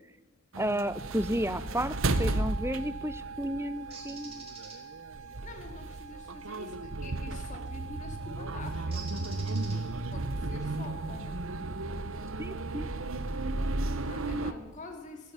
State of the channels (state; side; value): normal; both; correlation 0.67